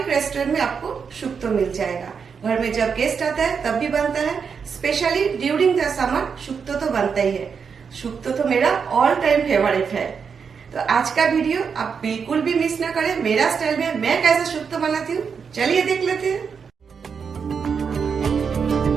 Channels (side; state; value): left; quieter; 6.2 dB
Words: रेस्टोरेंट में आपको शुक्तो मिल जाएगा। घर में जब गेस्ट आता है तब भी बनता है। Specially during the summer shukto तो बनता ही है। शुक्तो तो मेरा ऑल टाइम फेवरेट है। तो आज का वीडियो आप बिल्कुल भी मिस ना करें। मेरा स्टाइल में मैं कैसे शुक्तो बनाती हूँ, चलिए देख लेते हैं।